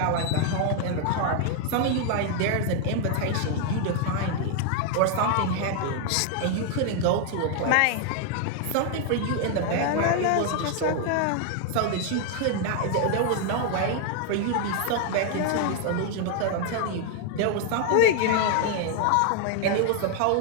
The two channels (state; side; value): different; both; correlation 0.00